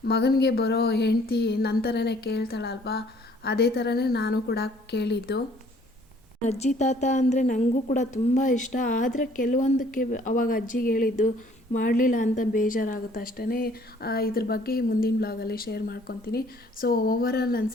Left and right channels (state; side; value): normal; both; correlation 0.59